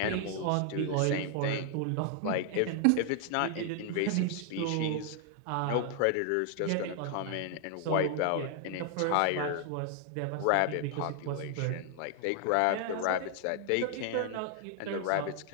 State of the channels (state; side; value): different; both; correlation 0.00